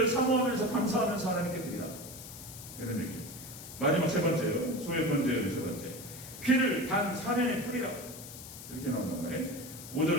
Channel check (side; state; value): left; noise; hiss, 13 dB below the sound